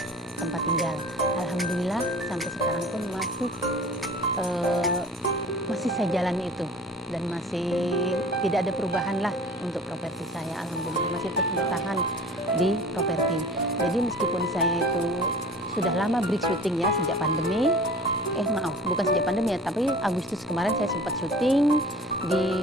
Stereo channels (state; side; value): normal; both; correlation 0.43